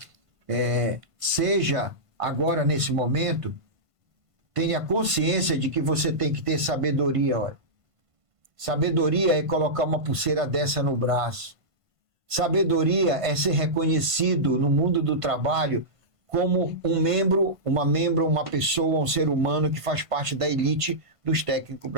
seja agora nesse momento, tenha consciência de que você tem que ter sabedoria, olha. Sabedoria é colocar uma pulseira dessa no braço. Sabedoria é ser reconhecido no mundo do trabalho como um membro, uma pessoa, um ser humano que faz parte da elite dos técnicos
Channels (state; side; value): late; left; 1.5 ms